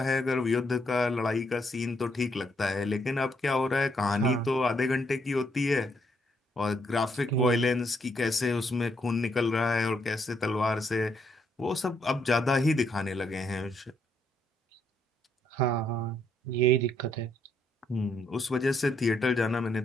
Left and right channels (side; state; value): both; normal; correlation 0.73